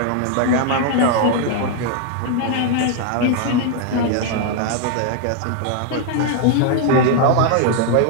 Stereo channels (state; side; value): different; both; correlation 0.00